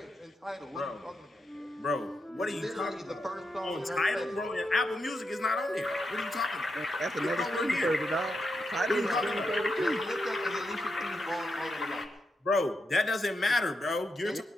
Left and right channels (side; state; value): both; normal; correlation 0.84